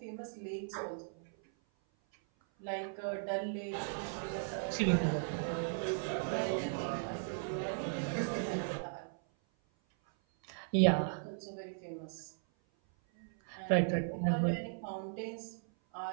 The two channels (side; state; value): left; silent; 53 dB below the other